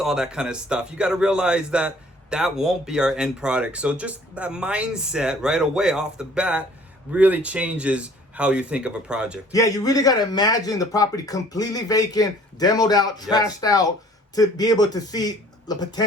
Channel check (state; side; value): normal; both; correlation 0.54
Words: all that kind of stuff. You got to realize that that won't be our end product. So just that mindset right away off the bat really changes how you think of a project. Yeah, you really got to imagine the property completely vacant, demoed out, trashed out, to be able to see the